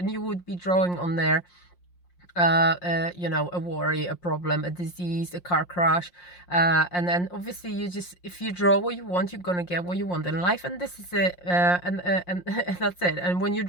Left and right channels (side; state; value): right; late; 5.6 ms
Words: you would be drawing on there a worry, a problem, a disease, a car crash, and then obviously if you draw what you want, you're gonna get what you want in life, and this is it, and that's it. And when you're